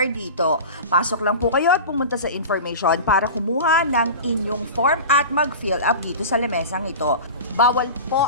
dito. Pasok lang po kayo at pumunta sa information para kumuha ng inyong form at mag-fill up dito sa lamesang ito. Bawal po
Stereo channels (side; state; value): both; inverted; correlation -0.32